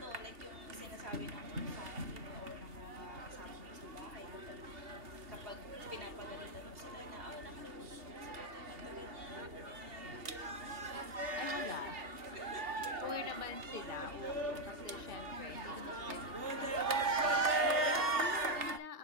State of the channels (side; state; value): left; late; 2.7 ms